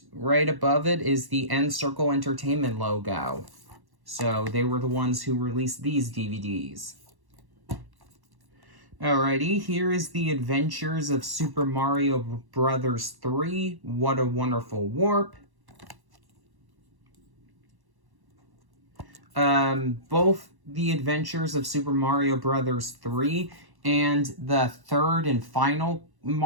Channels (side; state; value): left; late; 1.1 ms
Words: right above it is the N-Circle Entertainment logo. So they were the ones who released these DVDs. Alrighty, here is the Adventures of Super Mario Bros. 3, What a Wonderful Warp. Both the Adventures of Super Mario Bros. 3 and the third and final